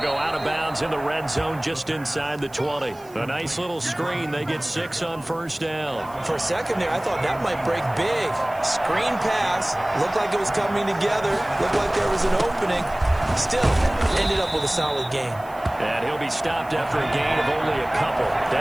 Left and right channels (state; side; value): noise; right; hiss, 25 dB below the sound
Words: go out of bounds in the red zone just inside the 20. A nice little screen. They get 6 on 1st down. For a second there, I thought that might break big. Screen pass. Looked like it was coming together. Looked like there was an opening. Still, ended up with a solid game. And he'll be stopped after a gain of only a couple